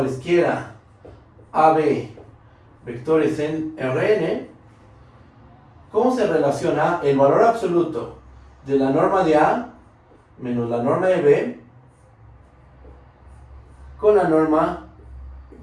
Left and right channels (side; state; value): both; identical; correlation 1.00